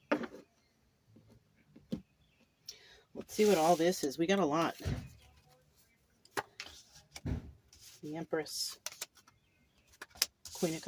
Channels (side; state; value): both; identical; correlation 1.00